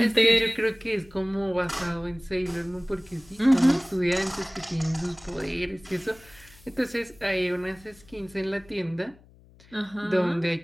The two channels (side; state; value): left; noise; hum, 26 dB below the sound